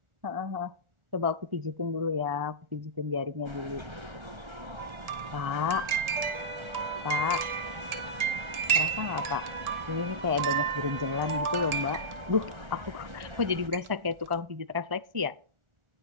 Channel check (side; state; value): left; late; 1.4 ms